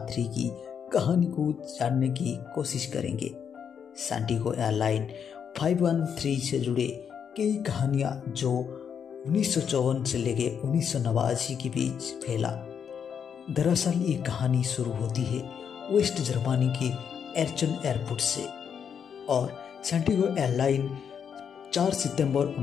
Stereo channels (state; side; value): quieter; right; 7.5 dB